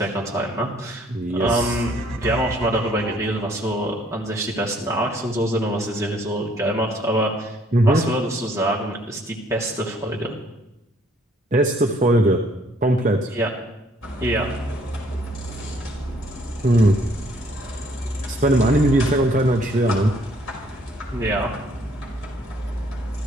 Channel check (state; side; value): normal; both; correlation 0.63